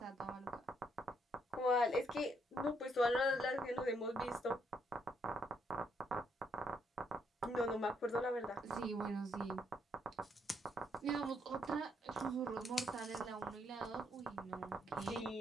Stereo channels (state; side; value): normal; both; correlation 0.73